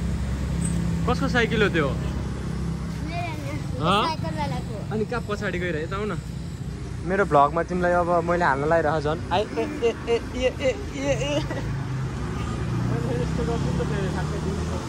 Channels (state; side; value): identical; both; correlation 1.00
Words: कसको साइकल हो त्यो अनि कहाँ पछाडि गइरहे त आउ न मेरो भ्लगमा तिमीलाई अब मैले हाल्न लागिरह झन्